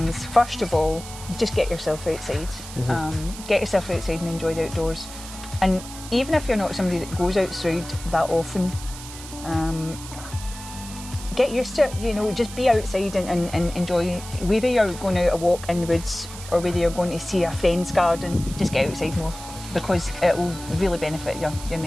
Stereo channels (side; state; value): right; noise; hiss, 13 dB below the sound